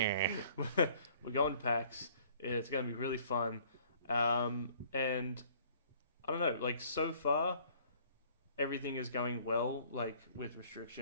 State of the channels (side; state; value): both; inverted; correlation -0.57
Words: We're going to PAX. It's going to be really fun. And I don't know, like so far everything is going well, like with